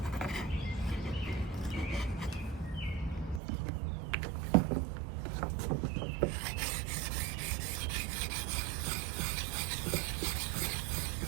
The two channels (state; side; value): drops out; left; at 3.4 s